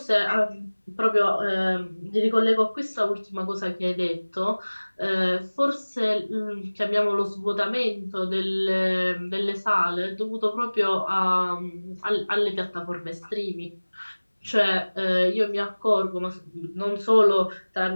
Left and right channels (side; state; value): both; inverted; correlation -1.00